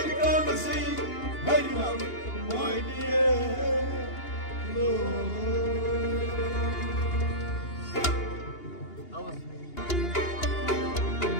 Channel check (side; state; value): right; late; 2.8 ms